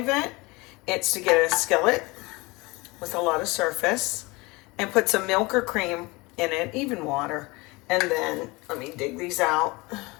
it, it's to get a skillet with a lot of surface and put some milk or cream in it, even water, and then let me dig these out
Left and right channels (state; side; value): quieter; right; 24.3 dB